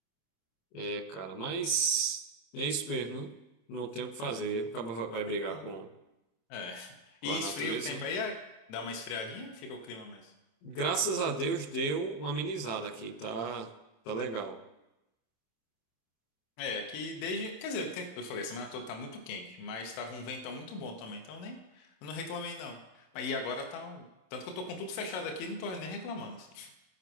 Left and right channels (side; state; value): right; late; 27 ms